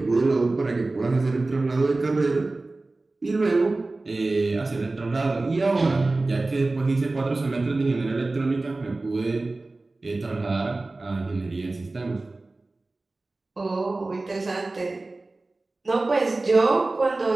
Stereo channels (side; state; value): left; quieter; 3.2 dB